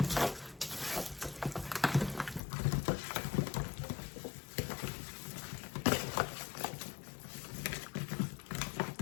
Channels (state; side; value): drops out; right; at 2.4 s